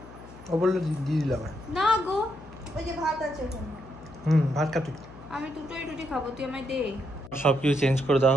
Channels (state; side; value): noise; left; hum, 18 dB below the sound